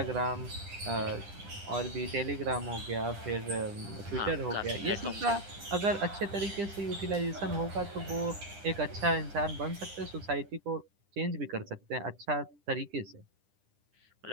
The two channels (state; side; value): late; left; 10 ms